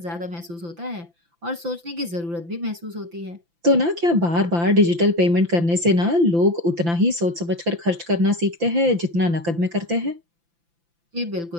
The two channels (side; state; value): left; late; 5.9 ms